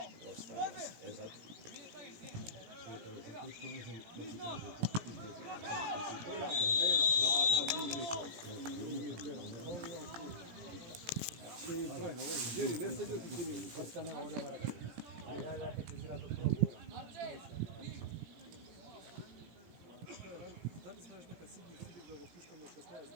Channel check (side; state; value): left; late; 17 ms